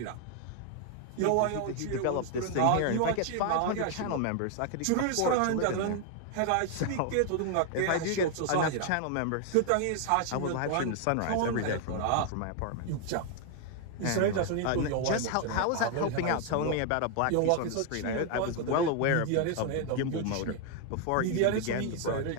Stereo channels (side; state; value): both; different; correlation 0.00